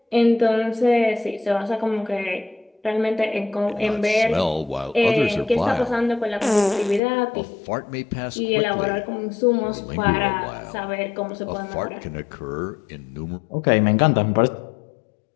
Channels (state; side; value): drops out; right; at 7.0 s